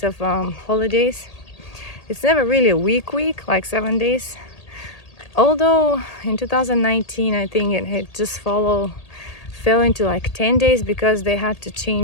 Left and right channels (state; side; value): late; right; 1.8 ms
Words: of holidays. It's never really a week, like 7 days. Although in 2019, I think it had just fell into like 10 days because they had to